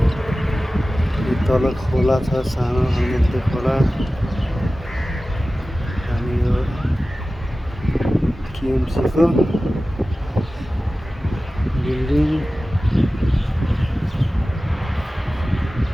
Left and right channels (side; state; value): both; normal; correlation 0.96